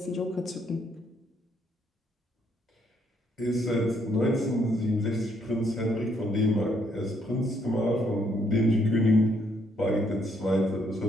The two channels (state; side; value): normal; both; correlation 0.71